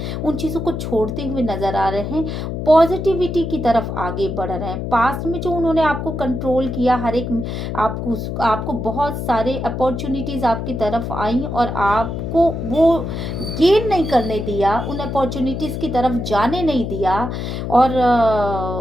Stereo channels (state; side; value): noise; left; hum, 4 dB below the sound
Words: उन चीज़ों को छोड़ते हुए नज़र आ रहे हैं, पॉजिटिविटी की तरफ आगे बढ़ रहे हैं। पास्ट में जो उन्होंने आपको कंट्रोल किया, हर एक आपको बहुत सारे अपॉर्चुनिटीज़ आपकी तरफ आई और आपको वो गेन नहीं करने दिया, उन अपॉर्चुनिटीज़ की तरफ जाने नहीं दिया, और